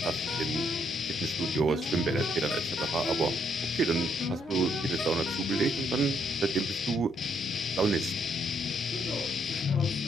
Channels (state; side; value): noise; right; hum, 29 dB below the sound